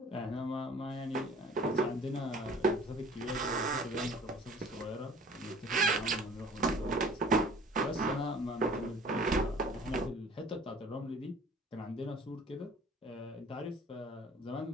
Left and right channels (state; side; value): normal; both; correlation 0.49